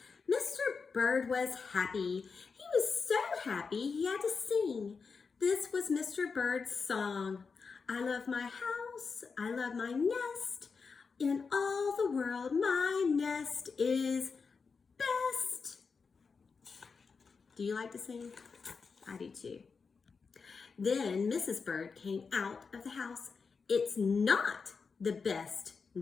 Mr. Bird was happy. He was so happy he had to sing. This was Mr. Bird's song. I love my house. I love my nest. In all the world, my nest is best. Do you like to sing? I do too. Then Mrs. Bird came out of the house. It's not the best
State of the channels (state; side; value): quieter; right; 5.1 dB